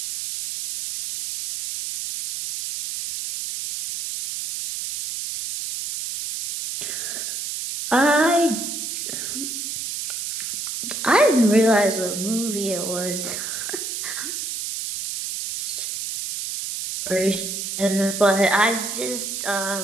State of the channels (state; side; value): noise; right; hiss, 5 dB below the sound